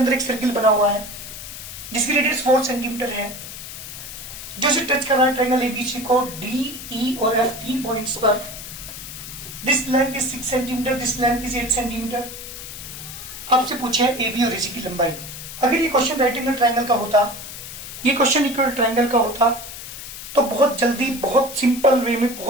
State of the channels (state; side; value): noise; left; hiss, 11 dB below the sound